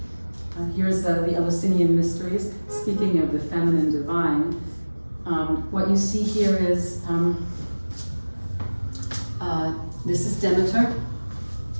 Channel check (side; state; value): both; inverted; correlation -1.00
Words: here's the Eleusinian Mysteries, speaking of the feminine divine, what you see here is, this is Demeter,